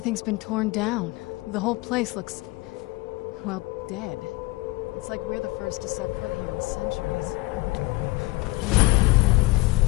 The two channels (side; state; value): right; quieter; 21.1 dB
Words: been torn down. The whole place looks, well, dead. It's like we're the first to set foot here in centuries.